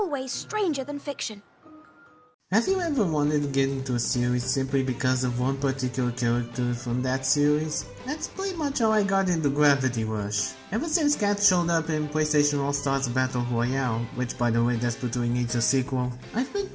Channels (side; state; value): both; identical; correlation 1.00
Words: stranger than fiction. Have you ever wanted to get into a series simply because of one particular character from that series? That's pretty much how I got into Gravity Rush. Ever since Cat showed up in PlayStation All-Stars Battle Royale, which by the way desperately needs a sequel, I've been